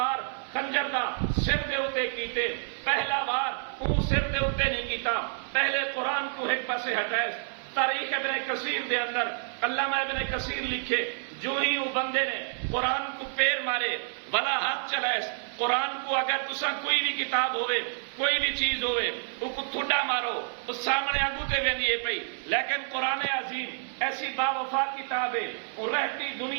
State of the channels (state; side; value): silent; left; 59 dB below the other